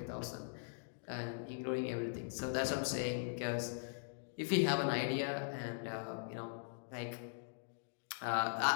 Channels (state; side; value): silent; right; digital silence